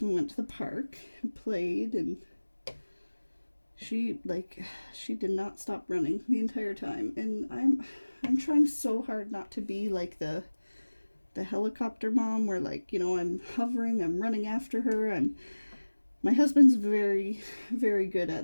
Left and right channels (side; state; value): both; inverted; correlation -1.00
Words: We went to the park and played, and she did not stop running the entire time. And I'm trying so hard not to be like the helicopter mom where, like, you know, I'm hovering, I'm running after her. My husband's very, very good